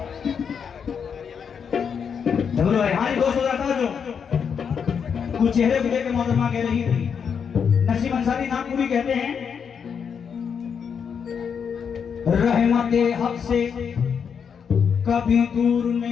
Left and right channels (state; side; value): quieter; right; 6.9 dB